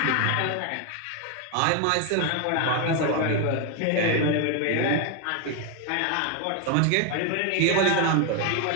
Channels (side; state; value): both; different; correlation 0.01